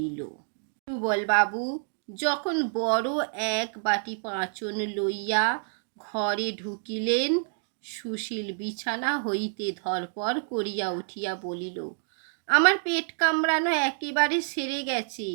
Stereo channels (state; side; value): silent; left; digital silence